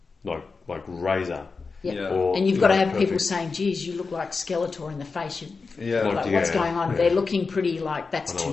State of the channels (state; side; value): quieter; right; 4.5 dB